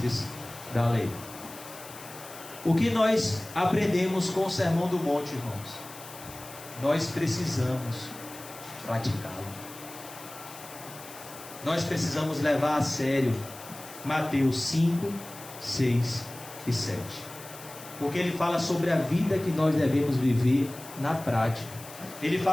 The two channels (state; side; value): noise; left; hiss, 16 dB below the sound